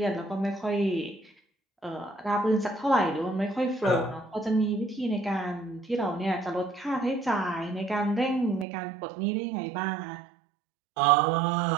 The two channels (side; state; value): left; drops out; at 8.7 s